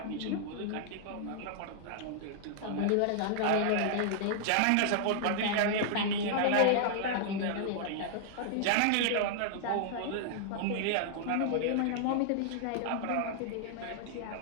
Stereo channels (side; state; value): both; different; correlation -0.01